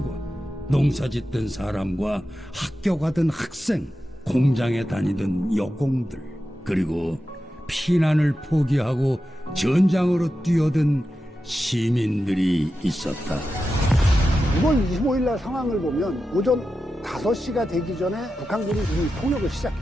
농사짓던 사람과 학교 가던 학생, 공장에 다니던 여공들, 그리고 피난을 포기하고 전장으로 뛰어든 시민들이 있었다. 6월 25일 날 상황을 보면 오전 5시가 되기 전에 북한군이 이미 폭력을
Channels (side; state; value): both; normal; correlation 0.91